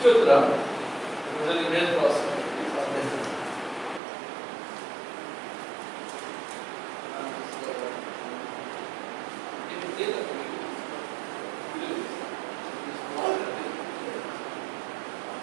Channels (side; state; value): left; drops out; at 4.0 s